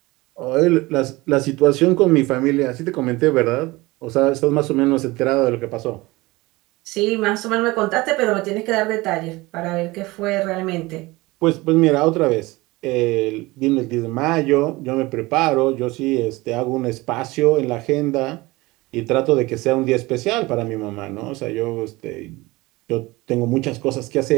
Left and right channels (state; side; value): quieter; left; 21.4 dB